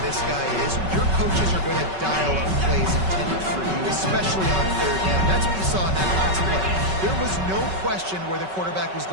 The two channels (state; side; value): late; left; 5.3 ms